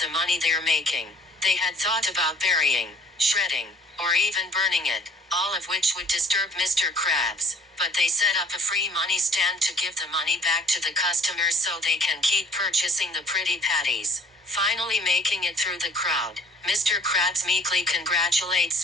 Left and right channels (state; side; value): normal; both; correlation 0.53